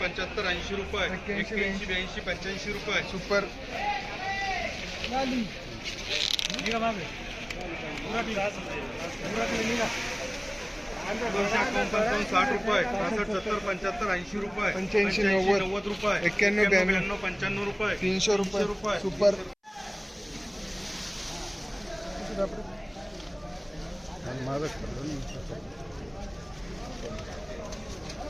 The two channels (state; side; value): identical; both; correlation 1.00